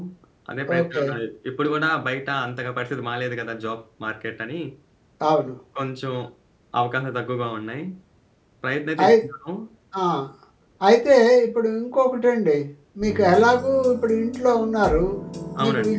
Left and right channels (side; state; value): both; identical; correlation 1.00